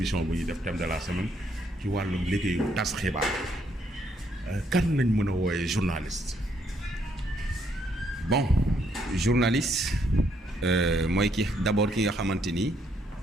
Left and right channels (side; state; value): both; normal; correlation 0.72